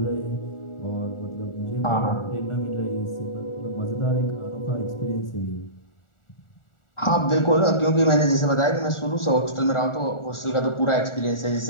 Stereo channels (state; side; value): late; right; 1.4 ms